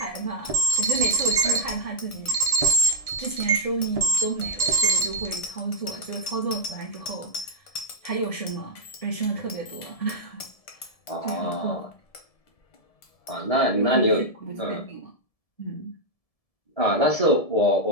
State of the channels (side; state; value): right; late; 1.7 ms